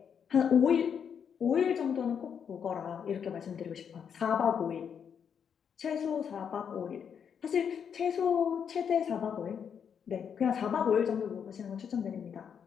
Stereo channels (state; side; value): quieter; right; 7.5 dB